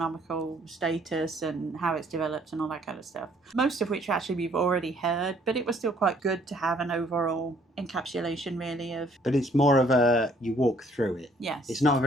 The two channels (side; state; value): both; normal; correlation 0.62